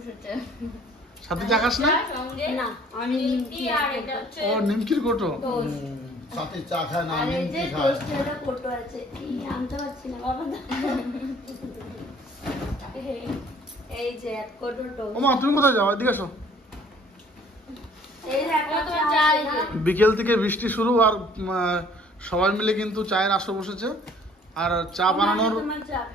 সাথে চা খাস না? না, আমি নিমকি আর এটা হচ্ছে ও নিমকির কোটো। সাথে চা খায় না, আর এই যে নিমকি খায়। টোস্টের কোটো আছে। আনতে পারছি না বাবা। এই যে এক কোটো টোস্ট। ওমা তুমি কোথায় যাও? এদিকে এসো। এই দেখো তোমার চা। বিকেল থেকে বৃষ্টি শুরু আর সবাই মিলে কিন্তু চায়ের আসর বসেছে। আর চা বানানোর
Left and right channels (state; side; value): normal; both; correlation 0.56